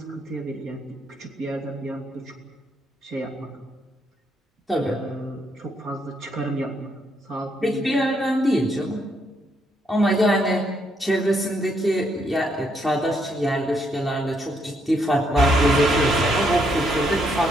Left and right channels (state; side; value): normal; both; correlation 0.74